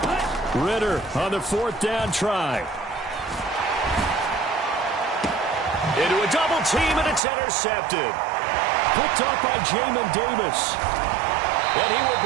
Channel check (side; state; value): left; drops out; at 7.2 s